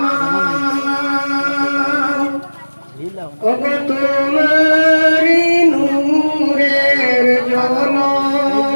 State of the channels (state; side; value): inverted; both; correlation -1.00